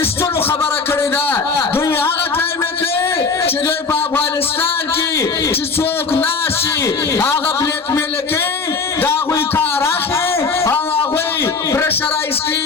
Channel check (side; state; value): right; quieter; 4.6 dB